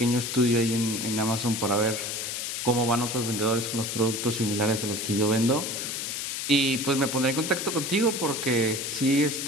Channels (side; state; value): left; noise; hiss, 4 dB below the sound